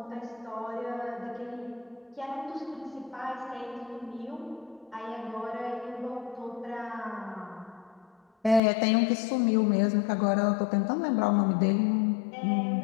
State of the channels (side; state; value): right; drops out; at 8.6 s